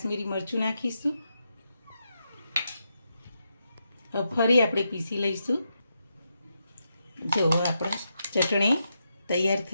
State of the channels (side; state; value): both; inverted; correlation -0.84